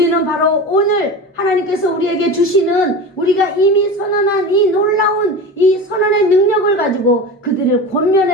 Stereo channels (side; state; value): both; normal; correlation 0.29